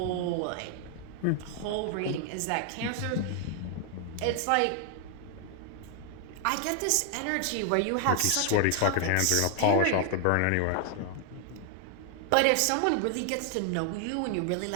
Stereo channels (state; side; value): different; both; correlation 0.00